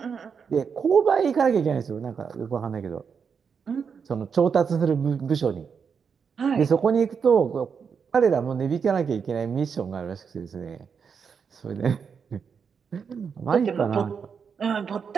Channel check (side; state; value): left; quieter; 6.3 dB